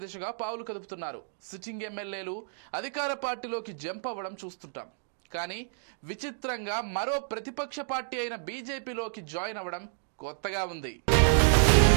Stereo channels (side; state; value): left; silent; digital silence